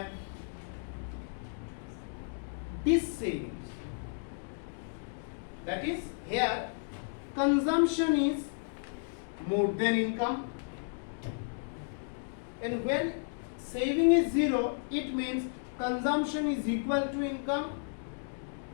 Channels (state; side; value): silent; right; digital silence